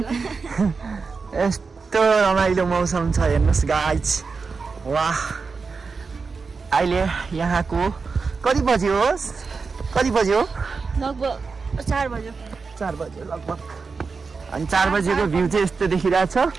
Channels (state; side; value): quieter; left; 4.7 dB